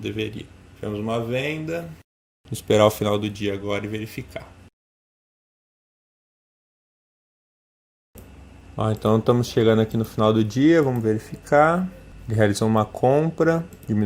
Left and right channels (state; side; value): identical; both; correlation 1.00